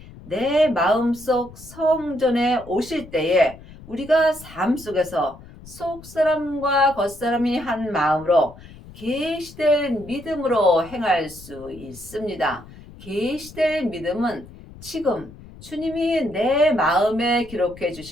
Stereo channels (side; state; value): left; noise; rumble, 19 dB below the sound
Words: 내 마음속 성전에 오실 때에 우리가 삶 속에서 속사람과 겉사람이 한 마음으로 계시된 믿음으로 행할 수 있습니다. 계시될 믿음은 지금 주님이 내 마음에 기록해